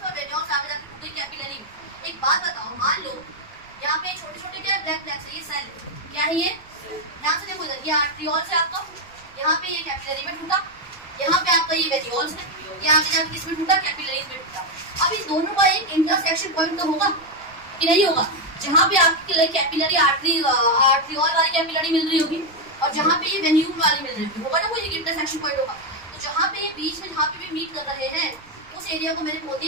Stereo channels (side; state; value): right; noise; rumble, 26 dB below the sound